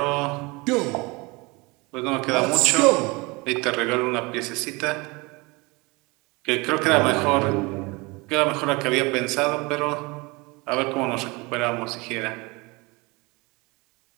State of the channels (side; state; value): left; quieter; 25.6 dB